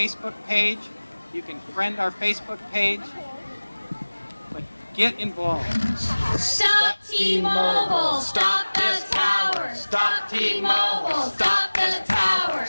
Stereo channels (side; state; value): both; inverted; correlation -1.00